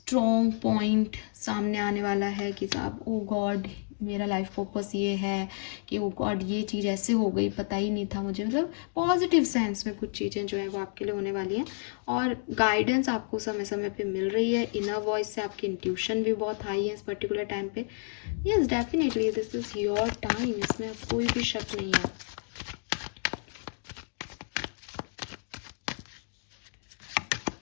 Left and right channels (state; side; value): silent; right; 58 dB below the other